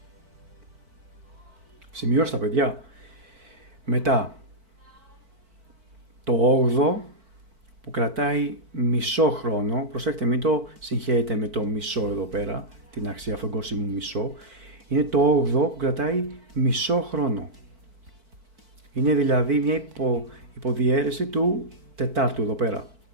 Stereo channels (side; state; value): left; late; 4.5 ms